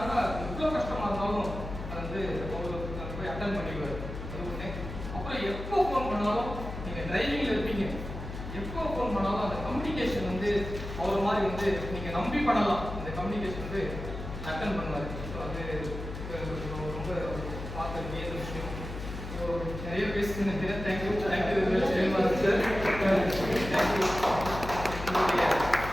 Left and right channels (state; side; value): noise; left; hum, 8 dB below the sound